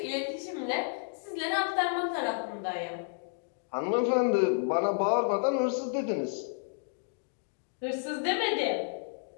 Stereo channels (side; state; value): right; silent; digital silence